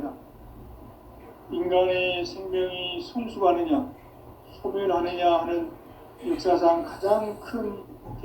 인간의 생명이 성숙하느냐, 소멸하느냐 하는 역사상 가장 큰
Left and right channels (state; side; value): identical; both; correlation 1.00